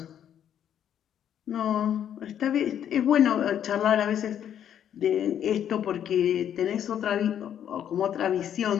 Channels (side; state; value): right; quieter; 9.7 dB